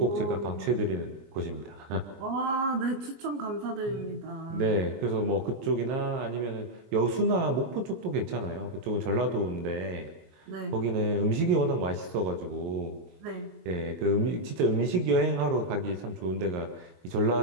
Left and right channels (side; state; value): left; late; 23 ms